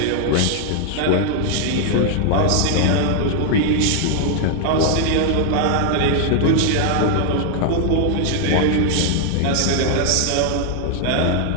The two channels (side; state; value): both; different; correlation 0.00